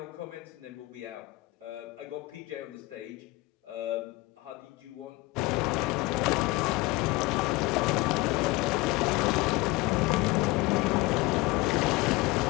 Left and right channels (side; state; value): right; quieter; 21.0 dB